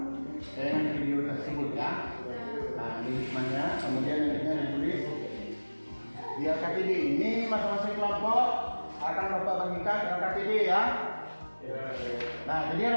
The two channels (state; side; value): inverted; both; correlation -1.00